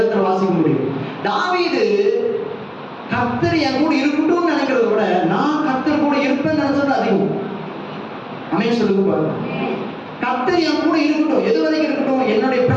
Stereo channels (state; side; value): identical; both; correlation 1.00